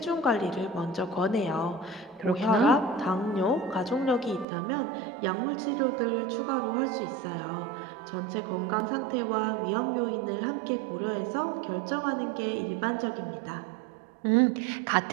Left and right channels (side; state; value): left; drops out; at 4.5 s